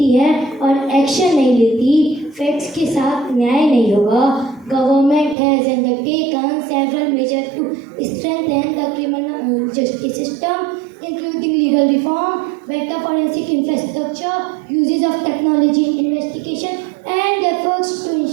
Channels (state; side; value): drops out; left; at 5.4 s